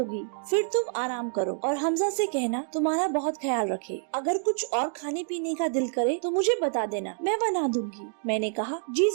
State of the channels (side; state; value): left; silent; digital silence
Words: फिर तुम आराम करो और हमजा से कहना तुम्हारा बहुत ख्याल रखे। अगर कुछ और खाने पीने का दिल करे तो मुझे बता देना, मैं बना दूंगी। मैंने कहा जी